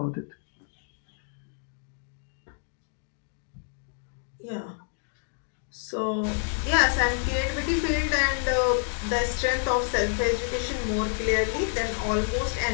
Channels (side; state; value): right; silent; 59 dB below the other